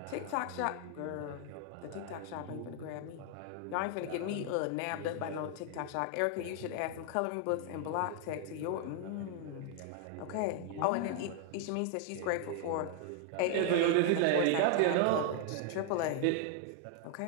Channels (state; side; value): different; both; correlation 0.00